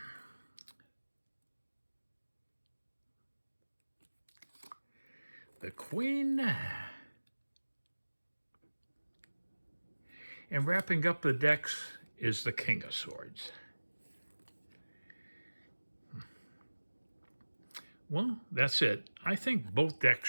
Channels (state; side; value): inverted; both; correlation -1.00